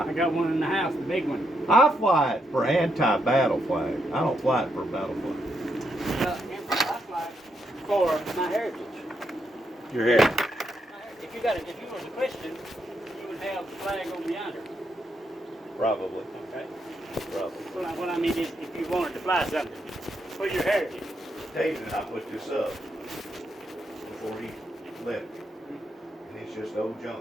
got one in the house, the big one. I fly it for anti-battle flag. I don't fly it for battle flag. I fly for my heritage. Your head. If you was a Christian, you would have the flag over yonder. Probably. Okay. Probably. So what I mean is, if you wanted to fly something for your heritage. David and I put this up before he left. And it's just old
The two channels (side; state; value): both; normal; correlation 0.79